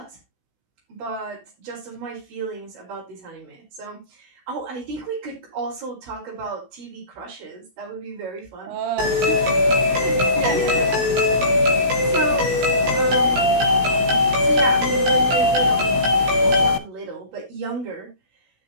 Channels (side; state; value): left; late; 16 ms